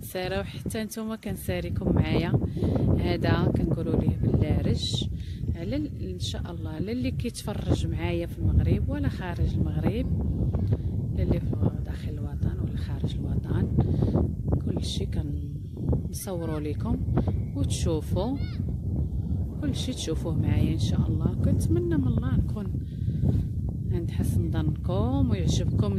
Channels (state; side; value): identical; both; correlation 1.00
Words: كنسارة وحتى نتوما كنساريكم معايا. هذا كنقولوا ليه باللارج على ان شاء الله على اللي كيتفرج معايا في المغرب ولا خارج المغرب، اللي في داخل الوطن ولا خارج الوطن، كل شيء كنصوروا لكم وتشوفوا كل شيء تشوفوه معايا ان شاء الله. كنتمنى من الله نكون عند حسن ظنكم ويعجبكم